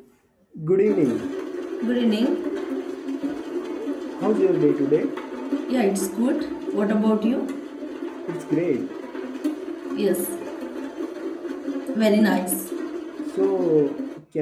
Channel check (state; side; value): identical; both; correlation 1.00